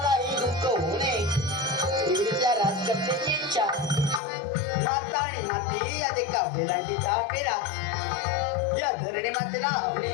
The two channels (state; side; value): drops out; right; at 4.2 s